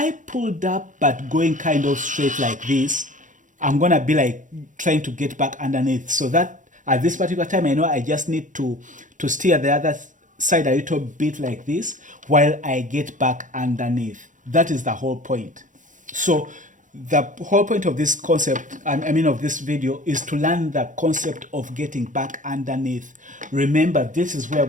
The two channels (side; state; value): left; late; 0.37 ms